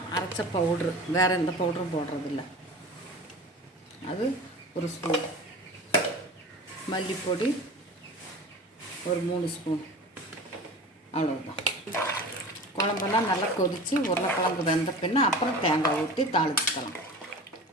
அரைச்ச பவுட்ரு, வேறு எந்த பவுட்ரும் போடுறதில்ல, அது 1 ஸ்பூன், மல்லிப்பொடி ஒரு 3 ஸ்பூன், அவ்வளோதான். குழம்பெல்லாம் நல்லா கொதித்து உருளைக்கிழங்கு வெந்த பின்ன அப்புறம் தேங்காய் ஊற்றி தாளிச்சுக்கலாம்.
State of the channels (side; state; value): both; normal; correlation 0.36